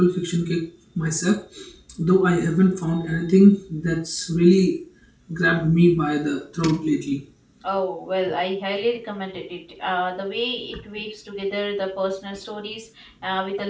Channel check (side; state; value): both; identical; correlation 1.00